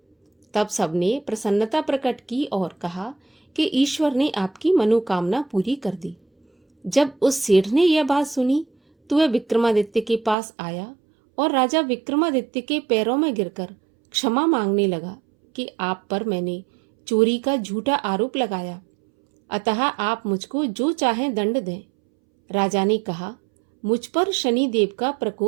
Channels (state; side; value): drops out; left; at 10.4 s